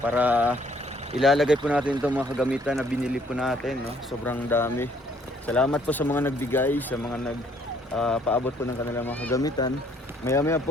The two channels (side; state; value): both; normal; correlation 0.63